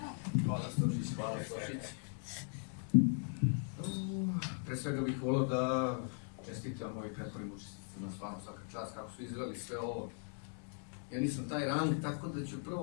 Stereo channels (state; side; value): silent; right; 52 dB below the other